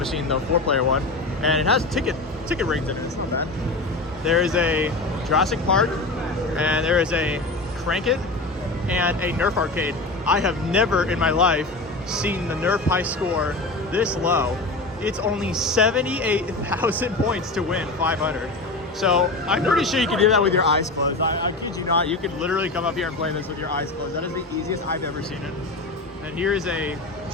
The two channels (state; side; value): quieter; right; 3.1 dB